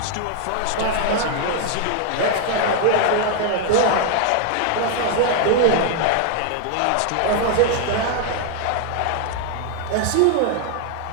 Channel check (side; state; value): both; different; correlation 0.00